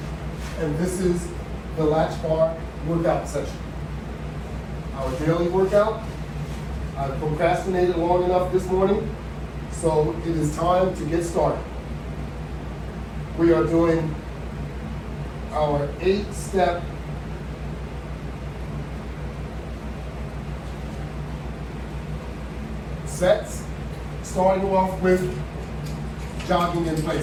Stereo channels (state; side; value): identical; both; correlation 1.00